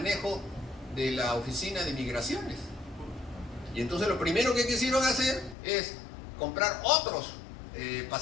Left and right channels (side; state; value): right; drops out; at 5.6 s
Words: de la oficina de migraciones. Y entonces lo primero que quisieron hacer es comprar otros